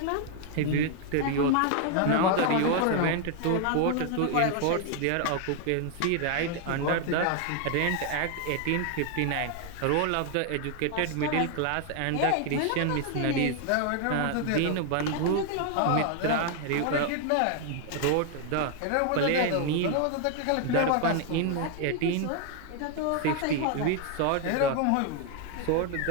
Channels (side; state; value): both; different; correlation 0.00